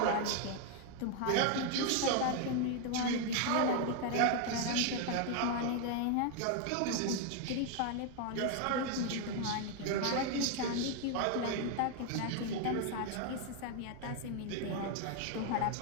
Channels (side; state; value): both; different; correlation 0.01